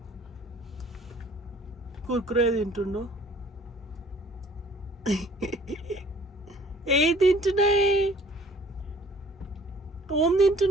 కుర్కురే తింటుండు. ఏ తింటున్నాయి? ఓం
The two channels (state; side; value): normal; both; correlation 0.54